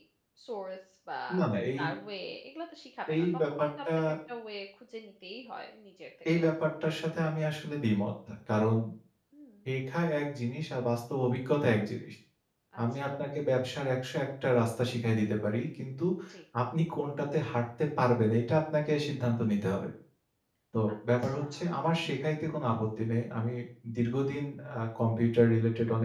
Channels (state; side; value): identical; both; correlation 1.00